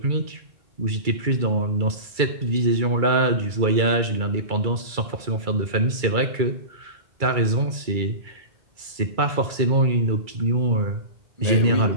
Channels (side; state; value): left; late; 2.3 ms